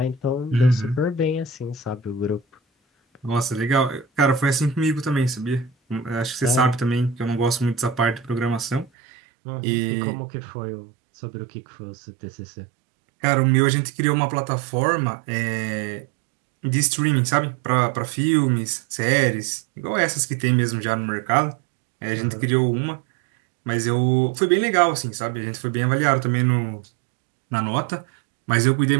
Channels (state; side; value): drops out; left; at 8.9 s